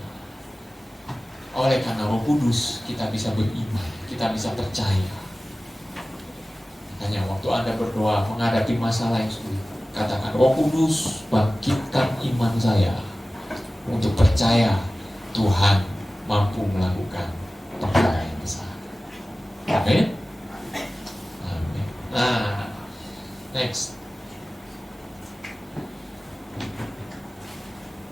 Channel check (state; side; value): normal; both; correlation 0.97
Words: oleh karena Roh Kudus kita bisa beriman, kita bisa percaya. Makanya waktu Anda berdoa menghadapi masalah yang sulit, katakan, Roh Kudus bangkitkan iman saya untuk percaya Tuhan mampu melakukan perkara yang besar. Amin. Amin. Nah, next.